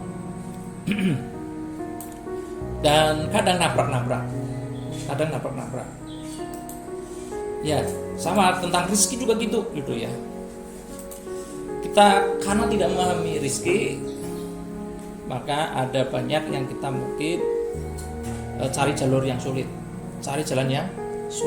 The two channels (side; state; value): both; identical; correlation 1.00